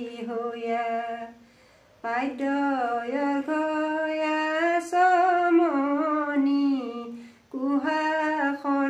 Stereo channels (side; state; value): both; identical; correlation 1.00